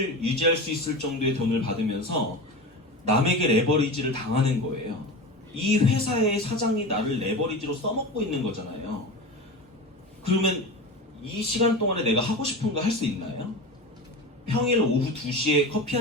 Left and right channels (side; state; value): both; normal; correlation 0.27